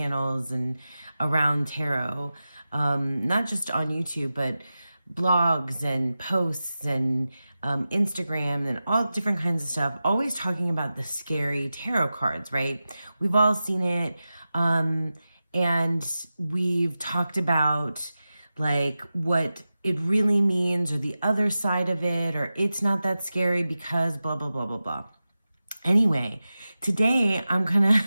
and around tarot, not just on YouTube, but blogs and posts and Instagram and all different kinds of stuff, always talking about the scary tarot cards, right? We've all seen it. And we've talked about like what it really means or the other side of it, or it's not that scary because blah, blah, blah, blah, blah. Anyway, today I'm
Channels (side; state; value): both; inverted; correlation -0.94